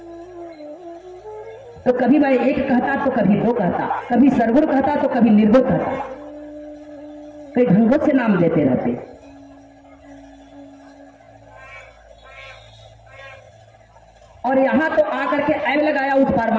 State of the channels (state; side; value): identical; both; correlation 1.00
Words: तो कभी मैं एक कहता तो कभी 2 कहता, कभी सरगुण कहता तो कभी निर्गुण कहता, कई ढंगों से नाम देते रहते। और यहां तो आकर के ऐब लगाया उस